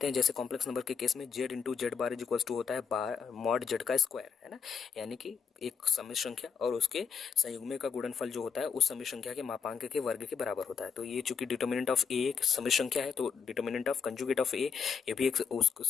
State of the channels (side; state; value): right; quieter; 6.6 dB